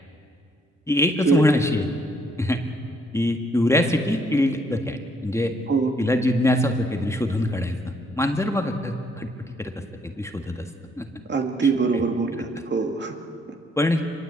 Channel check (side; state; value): both; normal; correlation 0.68